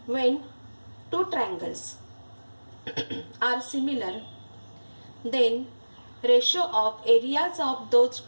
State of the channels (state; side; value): inverted; both; correlation -1.00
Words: When two triangles are similar then ratio of areas of those